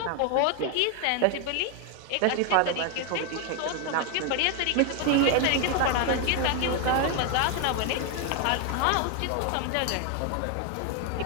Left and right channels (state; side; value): different; both; correlation 0.01